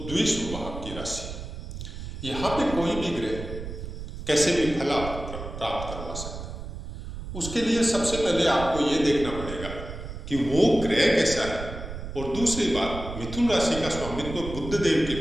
द्विशुभ भाव की राशि। यहाँ पे कोई भी ग्रह कैसे भी फल आपको प्राप्त करवा सकता है। उसके लिए सबसे पहले आपको ये देखना पड़ेगा कि वो ग्रह कैसा है। और दूसरी बात, मिथुन राशि का स्वामित्व बुध देव के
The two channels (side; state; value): right; noise; rumble, 9 dB below the sound